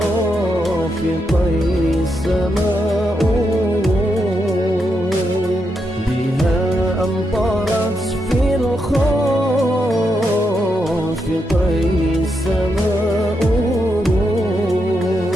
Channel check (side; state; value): both; normal; correlation 0.82